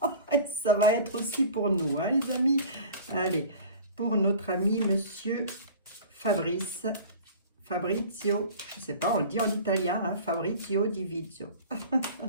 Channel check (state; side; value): inverted; both; correlation -0.41